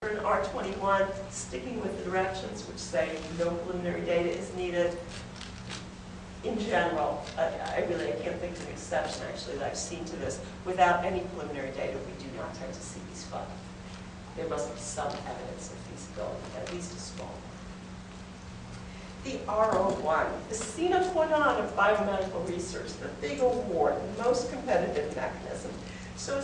R21, sticking with the directions which say no preliminary data is needed. In general, I can't think of an exception actually that I've seen to this. Without any preliminary data, we do not tend to see these funds. There must be some evidence of feasibility, at least a small one. The R01, the sine qua non of biomedical research, the big award, the most competitive mechanism. So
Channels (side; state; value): both; identical; correlation 1.00